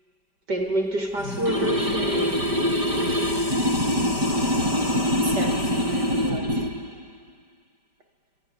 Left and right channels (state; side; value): late; left; 5.1 ms